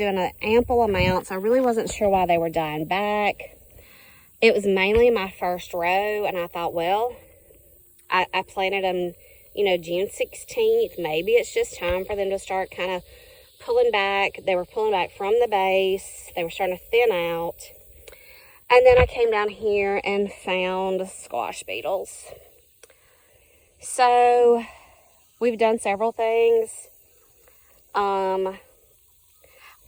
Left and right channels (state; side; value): identical; both; correlation 1.00